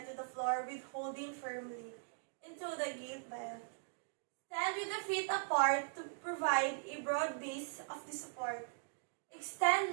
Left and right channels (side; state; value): left; silent; digital silence